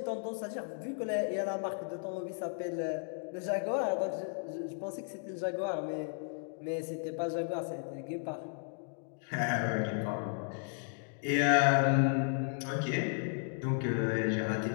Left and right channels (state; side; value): silent; right; 55 dB below the other